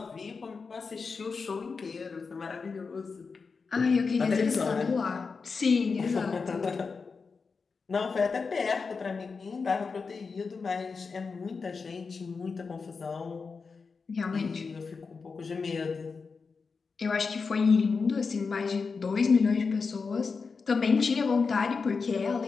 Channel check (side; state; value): right; quieter; 4.9 dB